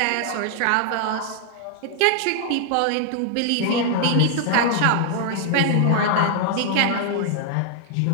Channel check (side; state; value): both; different; correlation 0.00